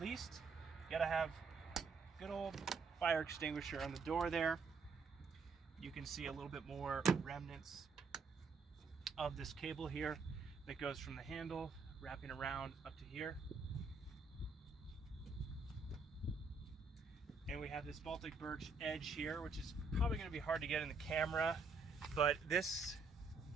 least, you gotta have good old fire extinguisher on the door there. You can see a little bit more remnants of this cable here that goes from the handle wrapping around up to here. And we have this Baltic birch edge here, which is probably going to be hard to get in the camera, but this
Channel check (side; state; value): left; quieter; 4.4 dB